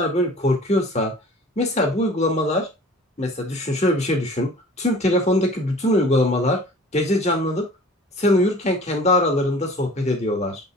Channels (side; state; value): both; normal; correlation 0.46